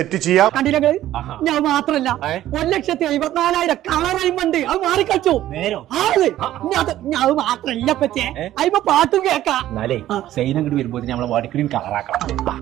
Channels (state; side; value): quieter; left; 13.4 dB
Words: ചെയ്യാം. കണ്ടില്ല ഞാൻ മാത്രല്ല 1,54,000 കളർ അയിമുണ്ട്. അത് മാറിക്കളിച്ചു അത് മാത്രല്ല പറ്റേ അയിമ പാട്ടും കേക്കാം. സൈനങ്ങോട്ട് വരുമ്പോ നമ്മളെ വാടിക്കടിയും കളറാക്കണം.